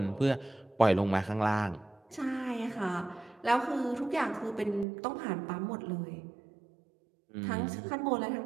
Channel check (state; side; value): drops out; left; at 4.9 s